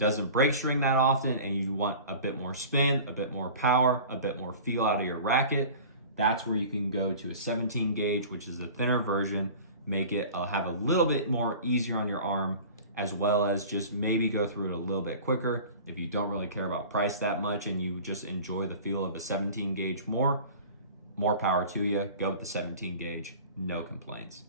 break string that often and you want a bit more spin, a bit more power, a bit more feel out of your racket, that's where you can go to a 17 gauge, which is a thinner version, make it have a little bit more easier on your arm, as well as just maybe go through it a little bit quicker. If you don't really care about price that much and you just enjoy the feel of a 17 gauge more power to you. Go with the 17 gauge, no complaints.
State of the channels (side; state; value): both; inverted; correlation -0.40